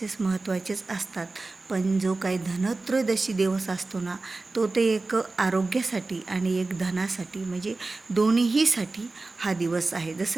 महत्त्वाचेच असतात, पण जो काही धनत्रयोदशी दिवस असतो ना, तो ते एक आरोग्यासाठी आणि एक धनासाठी म्हणजे दोन्हीसाठी हा दिवस आहे.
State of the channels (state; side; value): quieter; left; 3.5 dB